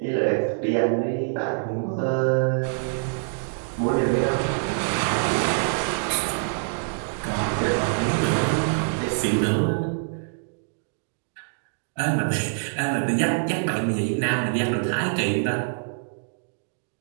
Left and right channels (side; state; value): left; silent; digital silence